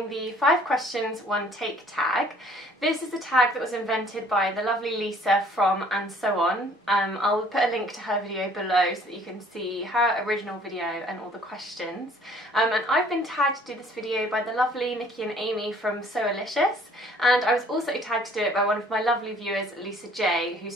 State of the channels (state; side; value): normal; both; correlation 0.56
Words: the 5 questions 1 take tag. This is the tag that was invented by the lovely Lisa from And So On. I'll put a link to her video below so that you can see her original video and all the questions. And I've been tagged to do this video by the lovely Nikki and Amy from Soalicious, and I was also tagged to do it by one of my lovely viewers, Lisa J, who